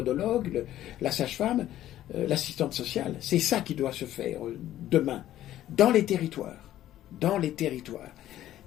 la sage-femme, l'assistante sociale. C'est ça qui doit se faire demain, dans les territoires. Dans les territoires.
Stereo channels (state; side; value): quieter; right; 13.0 dB